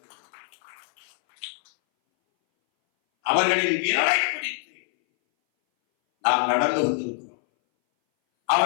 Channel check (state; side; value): silent; right; 60 dB below the other